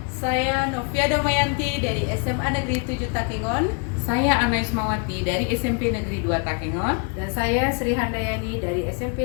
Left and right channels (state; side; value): quieter; right; 37.2 dB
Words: Saya Novia Damayanti dari SMA Negeri 7 Takengon. Saya Ana Ismawati dari SMP Negeri 2 Takengon. Dan saya Sri Handayani dari